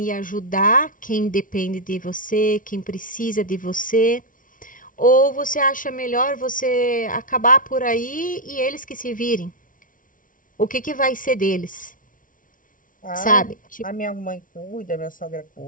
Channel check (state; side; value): late; right; 0.39 ms